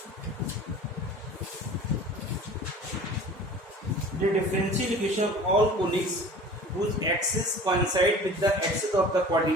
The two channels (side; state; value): both; normal; correlation 0.42